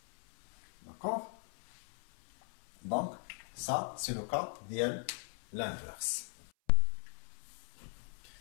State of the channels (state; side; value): silent; right; 51 dB below the other